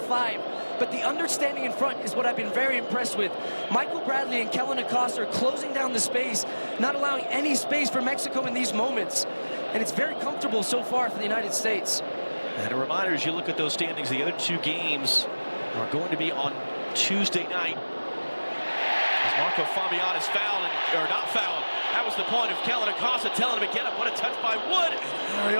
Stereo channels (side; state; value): both; inverted; correlation -1.00